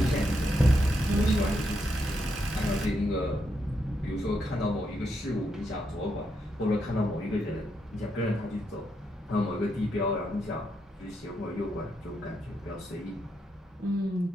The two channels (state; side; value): normal; both; correlation 0.80